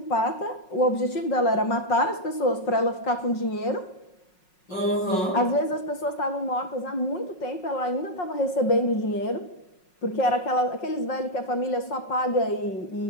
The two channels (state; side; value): late; right; 5.5 ms